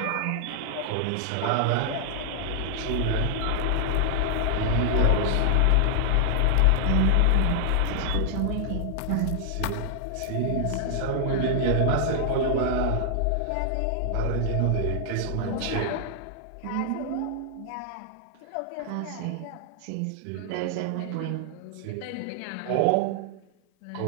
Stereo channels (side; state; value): both; different; correlation -0.01